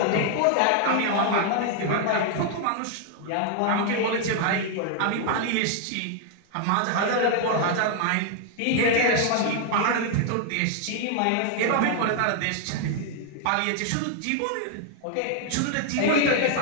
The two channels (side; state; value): both; different; correlation 0.00